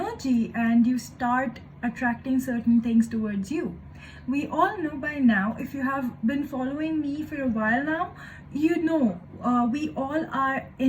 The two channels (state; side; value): identical; both; correlation 1.00